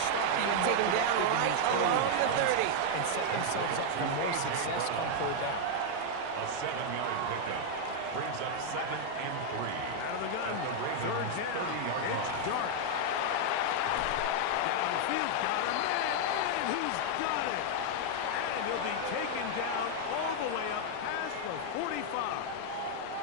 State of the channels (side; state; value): both; different; correlation 0.00